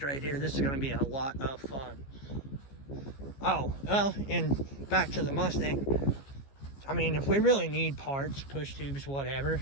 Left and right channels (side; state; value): right; late; 15 ms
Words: right here, this is gonna be a lot of fun. Oh, well, and back to the Mustang. I mean, if we really need parts, push tubes,